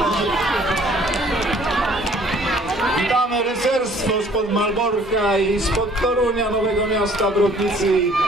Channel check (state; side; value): normal; both; correlation 0.57